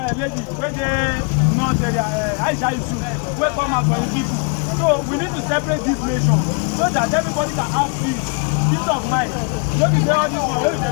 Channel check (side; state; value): right; quieter; 36.6 dB